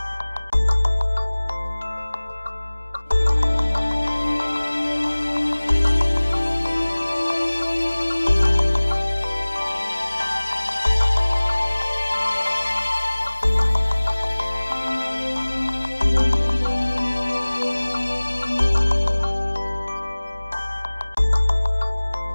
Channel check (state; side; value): inverted; both; correlation -1.00